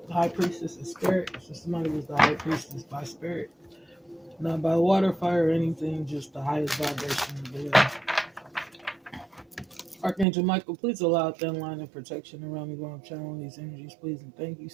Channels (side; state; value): left; drops out; at 10.2 s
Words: high priestess of spirit. So somebody was the high priestess by spirit. Not by water, fire, or anything, just the highest vibration of the living. Archangel Michael, please allow thin line of protection around me while I'm channeling these energies, please and thank you.